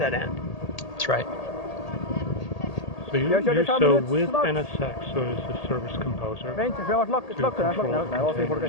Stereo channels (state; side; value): late; right; 1.8 ms